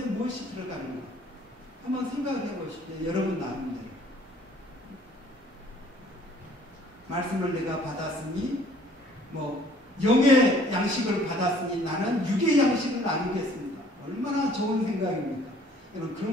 무엇이 들어가는가 한번 생각해 보십시오. 여러분 나름대로. 말씀을 내가 받았으니 뭐 영의 양식을 받았으니 나는 육의 양식을 나누겠습니다. 얼마나 좋은 생각입니까? 여러분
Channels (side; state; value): both; normal; correlation 0.57